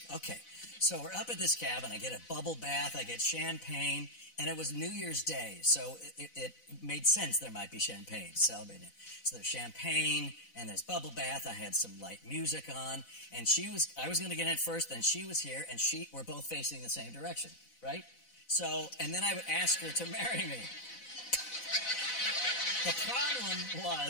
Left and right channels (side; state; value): right; late; 4.0 ms